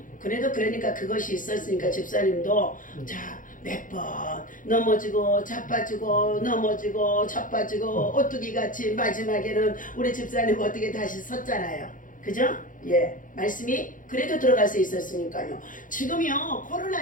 그래도 그러니까 그것이 있었으니까 집사님도 몇 번 넘어지고 자빠지고 오뚜기 같이 마지막에는 우리 집사님 어떻게 다시 섰잖아요. 그죠? 예, 말씀이 그래도 들어갈 수 있었으니까요. 지금요 코로나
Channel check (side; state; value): right; late; 0.39 ms